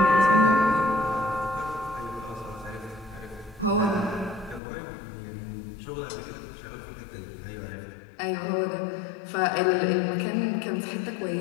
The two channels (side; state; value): right; drops out; at 4.6 s